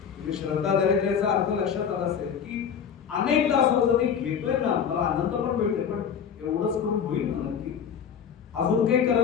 श्रद्धा दारिद्र्याचा अर्थ लक्षात आला असेल की अनेकदा असं होतं मी घेतोय ना, मला आनंद पण मिळतोय, पण एवढंच करून होईल ना नक्की, अजून काही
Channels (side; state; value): right; quieter; 7.5 dB